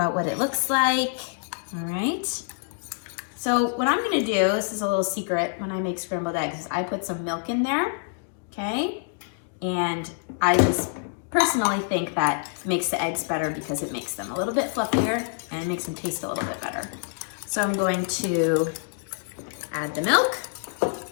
what it looks like, all right? So what I'm gonna do, this is a little secret when I make scrambled eggs, is I put some milk in there, okay? And I just personally think that makes the eggs better because it makes them a little bit fluffier and makes them taste a little bit better. So I'm going to add the milk.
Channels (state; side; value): silent; right; 61 dB below the other